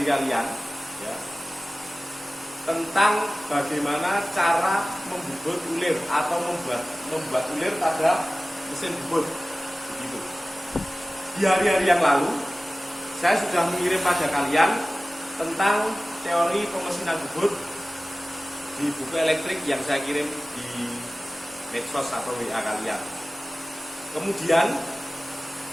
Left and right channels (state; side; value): normal; both; correlation 0.97